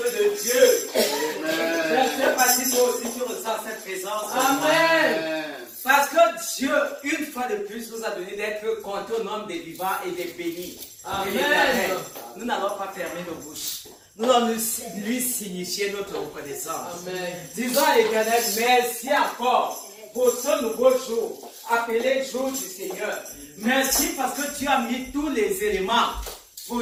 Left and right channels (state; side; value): identical; both; correlation 1.00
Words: Dieu. Je ne sais pas si toi aussi tu ressens cette présence. Amen. Parce que Dieu, une fois de plus, nous a donné d'être comptés au nombre des vivants et des bénis. Amen. Nous n'allons pas fermer nos bouches. Nous allons lui signifier notre reconnaissance. Amen. Disons à l'Éternel, merci encore pour ce nouveau jour, appelé jour du Seigneur. Merci parce que tu as mis tous les éléments